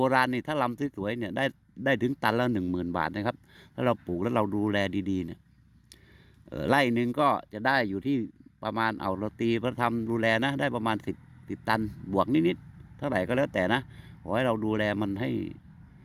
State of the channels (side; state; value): both; identical; correlation 1.00